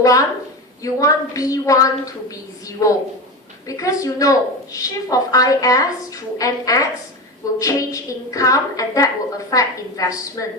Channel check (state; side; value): normal; both; correlation 0.24